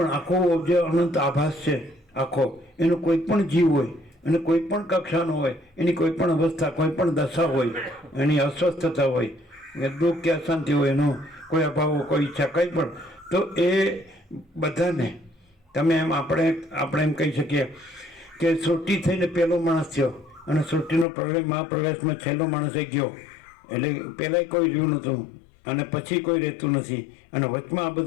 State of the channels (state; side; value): drops out; right; at 21.1 s